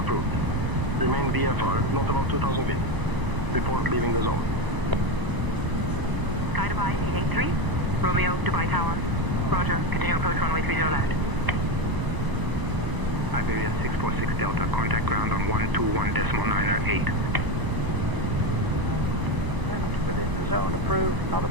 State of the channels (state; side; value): late; left; 1.0 ms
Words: Remain VFR not above 2,000 feet. Report leaving the zone. Sky Dubai 883, Romeo, Dubai Tower. Roger, continue approach runway 30 left. Iberia 646 Delta, contact ground on 121.908. Within the zone approved, not